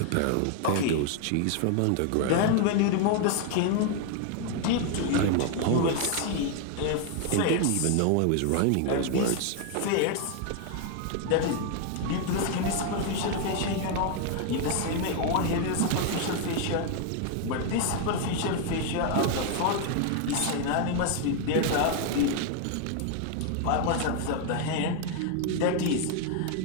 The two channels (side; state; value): both; different; correlation 0.00